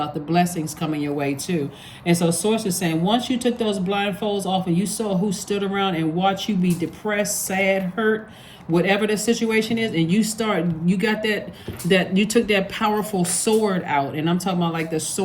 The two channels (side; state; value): both; identical; correlation 1.00